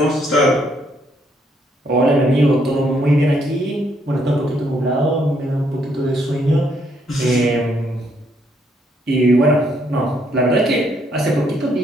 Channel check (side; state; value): both; normal; correlation 0.71